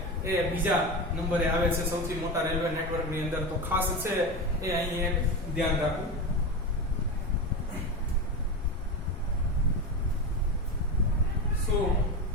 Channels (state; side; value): normal; both; correlation 0.21